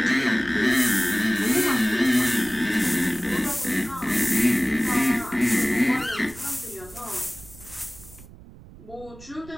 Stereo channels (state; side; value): noise; right; rumble, 20 dB below the sound